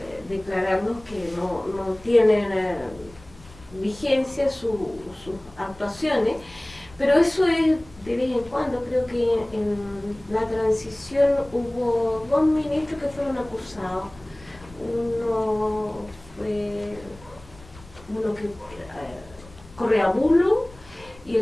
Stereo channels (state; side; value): noise; left; rumble, 22 dB below the sound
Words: declararnos que no tienen vigencia sus actuaciones. Pero eso es de vez en cuando. Creo que en la transición hubo 2 ministros que fueron acusados. Uno fue que Correa Bulo y